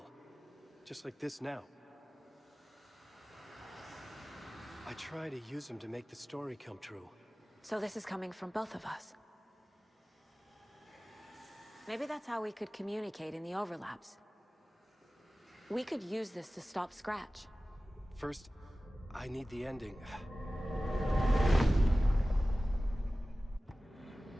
Just like this now. I try to use them to make the story come true. So this is coming from both of us. Maybe that's how we could communicate in the overlaps. We could use this to stop Scratch. First, I need the ending.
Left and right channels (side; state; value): both; normal; correlation 0.97